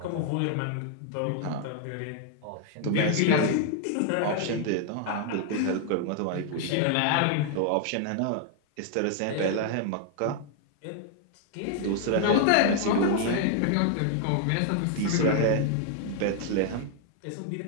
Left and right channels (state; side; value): different; both; correlation 0.00